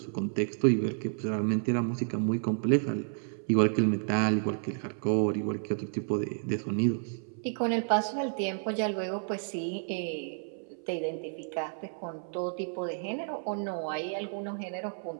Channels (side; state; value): left; silent; 57 dB below the other